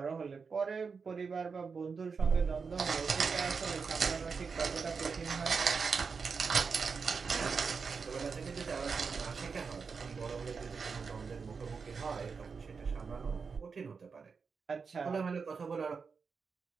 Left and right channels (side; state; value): left; quieter; 5.3 dB